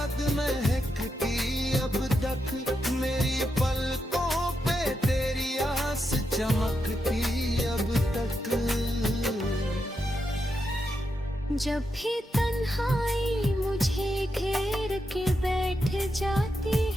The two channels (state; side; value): normal; both; correlation 0.85